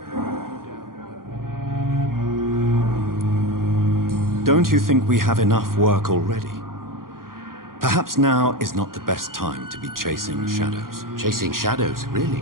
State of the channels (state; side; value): late; left; 0.91 ms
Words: Don't you think we have enough work already? Perhaps now is not the best time to be chasing shadows. Chasing shadows,